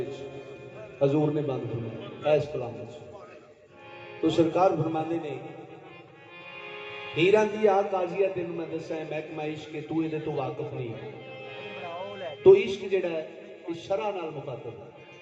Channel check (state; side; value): identical; both; correlation 1.00